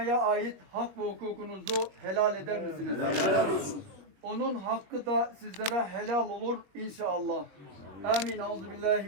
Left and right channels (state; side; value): late; left; 21 ms